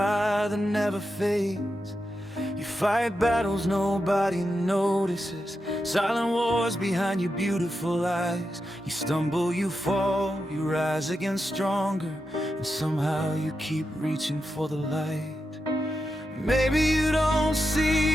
that never fades. You fight battles nobody notices, silent wars behind your beautiful eyes. You stumble, you fall, you rise again stronger, and somehow you keep reaching for the light. Maybe you don't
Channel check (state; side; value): normal; both; correlation 0.88